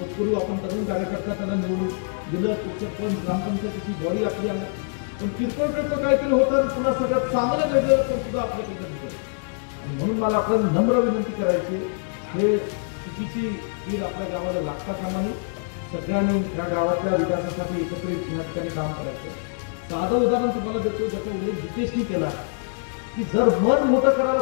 आपण तरुण कार्यकर्ता त्यांना निवडून दिलं सरपंच ग्रामपंचायतीची बॉडी आपली आल्या पण किरकोळ काहीतरी होतं पुन्हा सगळं चांगलं घडलं पण सुद्धा आपल्याकडे भेटेल. म्हणून मला आपल्याला नम्र विनंती करायची हे चुकीची कीड आपल्या गावाला लागता कामा नये. सगळ्यांनी या गावातल्या विकासासाठी एकत्रित या ठिकाणी काम करायचं. साधं उदाहरण तुम्हाला देतो, ज्याचा उल्लेख जितेशनी केला की जर मन मोठं करायला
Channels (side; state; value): right; silent; digital silence